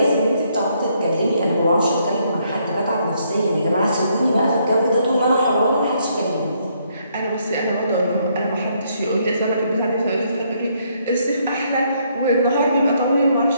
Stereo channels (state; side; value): inverted; both; correlation -0.71